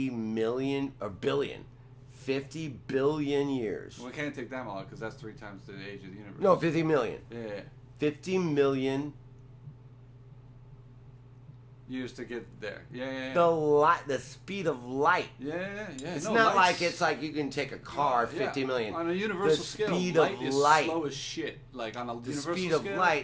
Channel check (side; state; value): both; identical; correlation 1.00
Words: million or billion, 50 billion years. Well, we can't take that long because that's 3 times the age of the universe. No, 50 million. Yeah. 50 million. Years to get there. Yeah. The speed of light. Yeah. It's No, not light's- like it's like you can take a car 50 million. On a universal the scale, speed light of is light. slow as shit. Like on a The universal speed of scale,